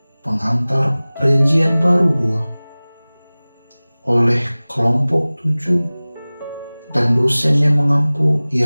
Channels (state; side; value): inverted; both; correlation -0.99